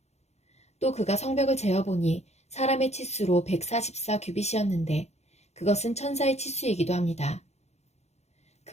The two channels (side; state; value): right; late; 0.32 ms